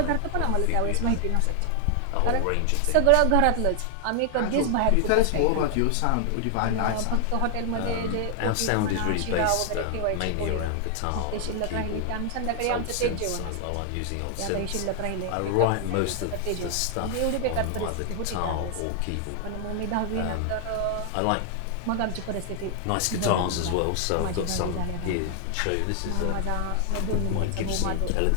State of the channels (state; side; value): different; both; correlation 0.00